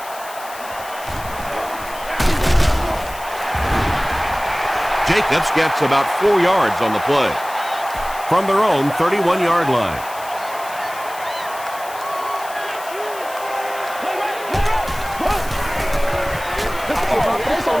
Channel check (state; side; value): noise; left; hiss, 16 dB below the sound